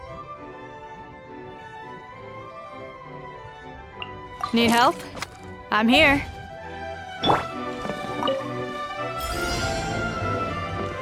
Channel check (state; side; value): identical; both; correlation 1.00